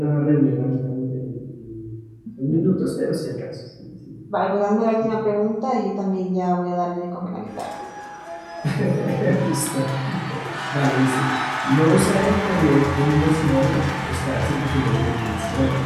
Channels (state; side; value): identical; both; correlation 1.00